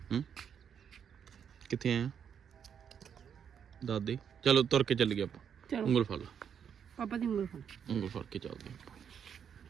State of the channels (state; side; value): quieter; left; 7.9 dB